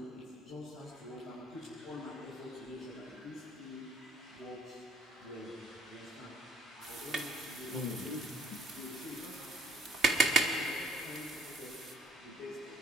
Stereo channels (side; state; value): both; normal; correlation 0.61